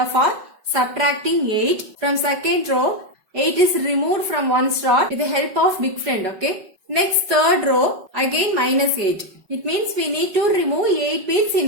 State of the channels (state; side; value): late; left; 5.3 ms